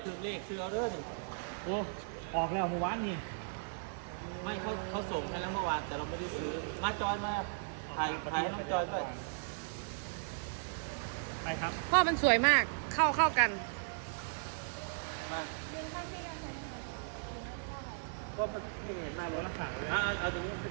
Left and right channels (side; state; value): left; silent; 53 dB below the other